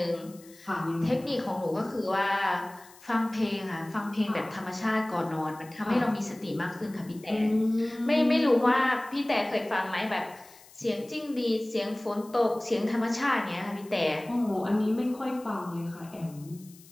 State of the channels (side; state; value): left; noise; hiss, 23 dB below the sound